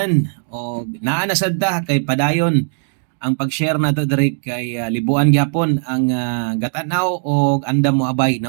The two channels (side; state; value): left; silent; digital silence